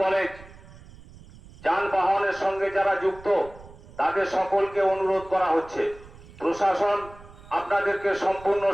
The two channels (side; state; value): right; noise; rumble, 20 dB below the sound